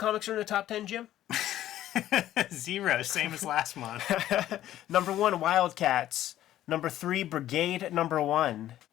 are in the top 10, Jim? 0, same as last month. Number 1, Wildcats. Number 3, Brigade number 1.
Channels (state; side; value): quieter; right; 13.0 dB